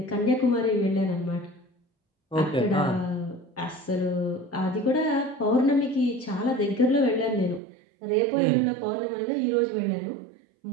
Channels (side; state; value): left; drops out; at 7.6 s